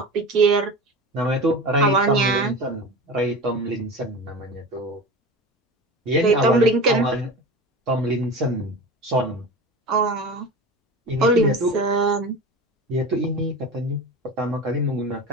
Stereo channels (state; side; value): normal; both; correlation 0.31